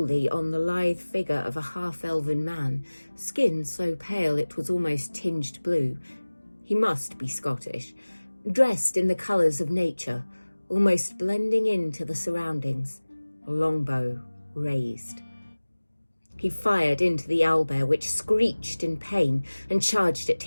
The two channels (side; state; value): both; inverted; correlation -1.00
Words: on the lithe figure of a half-elven man, skin so pale it was almost tinged blue. He must be Scottish, dressed in the colours of nature, almost blending into the surroundings, a longbow raised. He fired into the owlbear, which screeched in pain and charged at